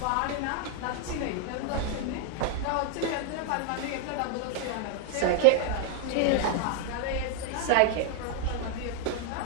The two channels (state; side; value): different; both; correlation 0.00